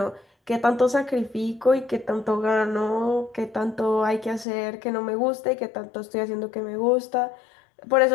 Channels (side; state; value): right; drops out; at 4.5 s